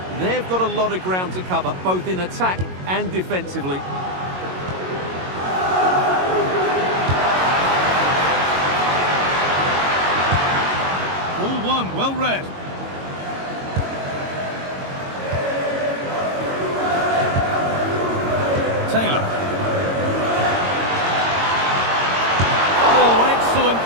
They've got a lot of ground to cover, both in attack and defensively. All one, well read. Taylor. Oh, excellent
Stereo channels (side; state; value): left; late; 22 ms